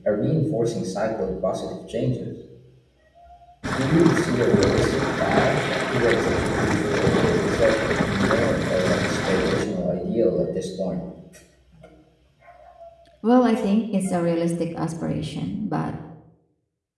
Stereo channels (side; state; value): both; identical; correlation 1.00